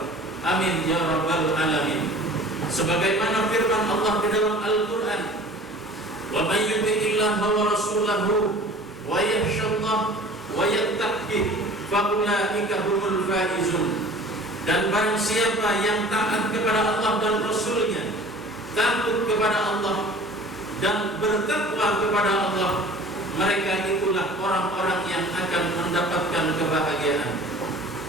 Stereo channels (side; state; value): both; normal; correlation 0.45